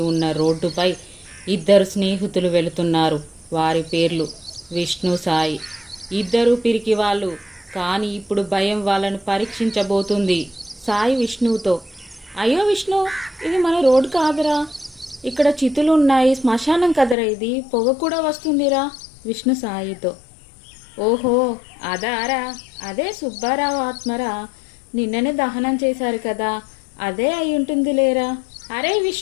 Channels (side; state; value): right; drops out; at 17.2 s